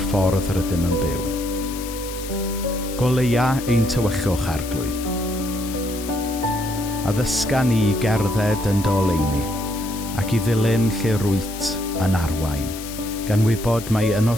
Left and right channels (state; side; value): noise; left; hiss, 12 dB below the sound